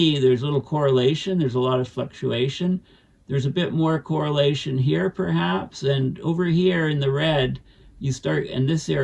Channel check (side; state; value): both; identical; correlation 1.00